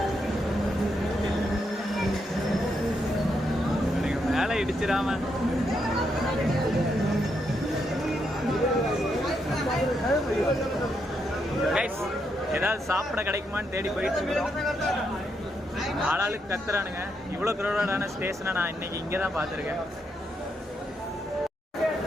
மேலே இடிச்சிடாம கைஸ், ஏதாவது சாப்பிட கிடைக்குமான்னு தேடி போயிட்டு இருக்கிறோம். ஆளாளுக்கு கத்துறானுங்க. இவ்வளோ க்ரௌடான ஸ்டேஷனை நான் இன்னைக்கு இங்கே தான் பார்த்துருக்கேன்.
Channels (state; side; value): normal; both; correlation 0.79